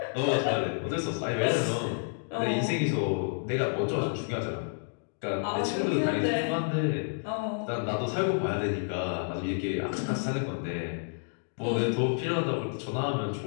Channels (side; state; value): right; silent; digital silence